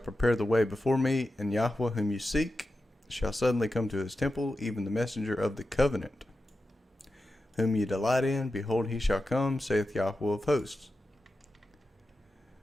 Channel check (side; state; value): both; normal; correlation 0.91